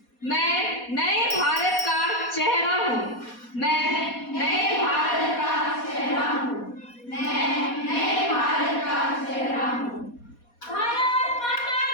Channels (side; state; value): right; late; 4.2 ms